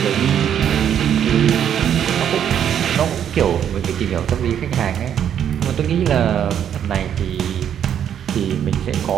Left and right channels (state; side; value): quieter; left; 9.3 dB